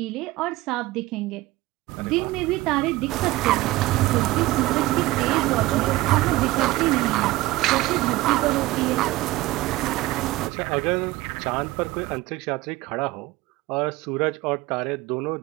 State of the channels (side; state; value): left; quieter; 18.6 dB